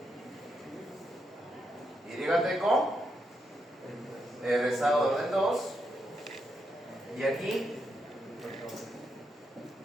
YT con el rezago de orden 2 y aquí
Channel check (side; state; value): both; normal; correlation 0.82